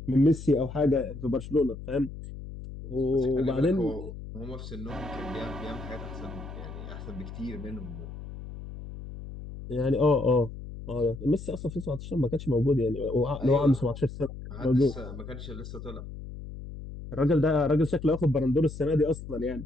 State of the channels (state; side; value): noise; left; hum, 11 dB below the sound